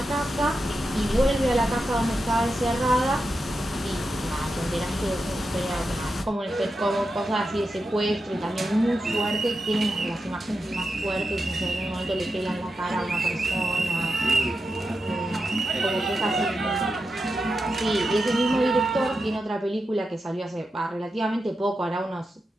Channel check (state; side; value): normal; both; correlation 0.88